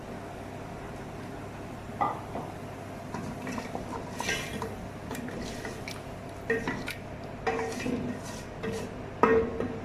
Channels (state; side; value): identical; both; correlation 1.00